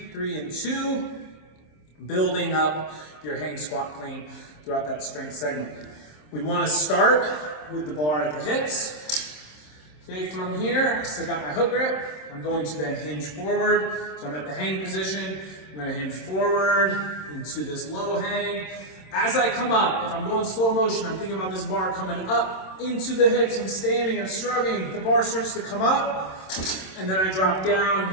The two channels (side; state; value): right; late; 26 ms